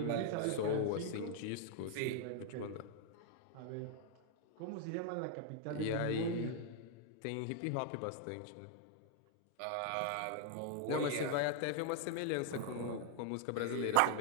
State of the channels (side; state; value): both; different; correlation 0.00